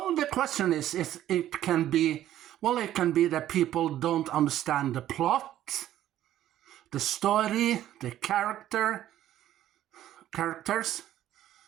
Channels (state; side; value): quieter; left; 12.6 dB